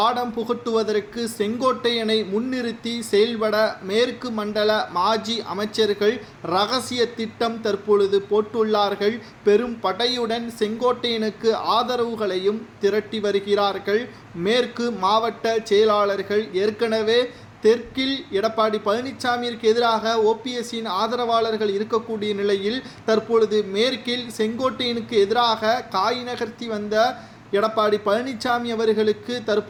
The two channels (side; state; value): both; identical; correlation 1.00